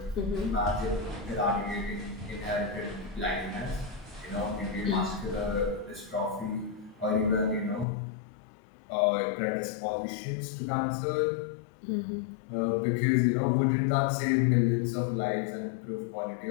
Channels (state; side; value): drops out; right; at 7.9 s